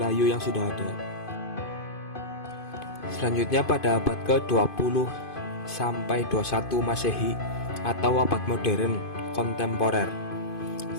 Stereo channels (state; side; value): late; right; 2.5 ms